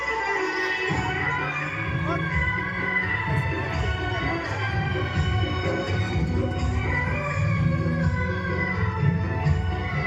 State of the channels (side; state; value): both; identical; correlation 1.00